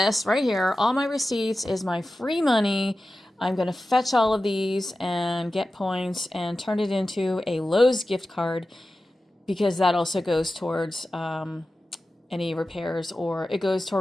right here, all my receipts, is my free money. I'm going to fetch all of these and get points and turn it into a Lowe's gift card, because that also goes towards any repairs, or it goes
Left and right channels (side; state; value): both; normal; correlation 0.94